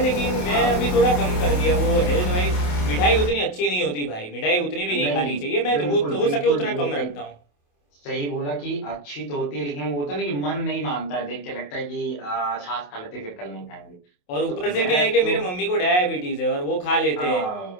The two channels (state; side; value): late; right; 28 ms